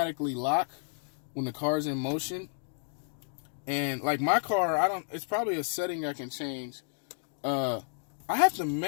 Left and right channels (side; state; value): right; silent; digital silence